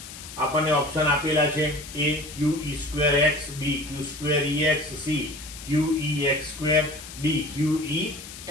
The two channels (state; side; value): noise; left; hiss, 13 dB below the sound